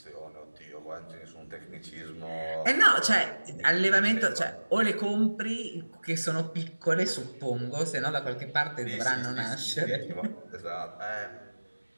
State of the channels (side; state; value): both; inverted; correlation -1.00